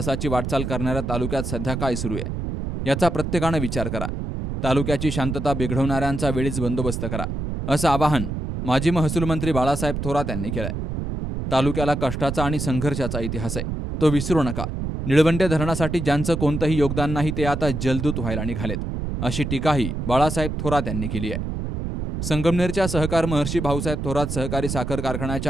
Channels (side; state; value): right; noise; rumble, 4 dB below the sound